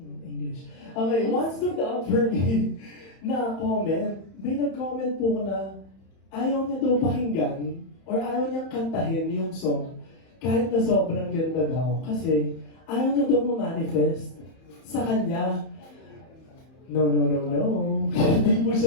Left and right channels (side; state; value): right; late; 31 ms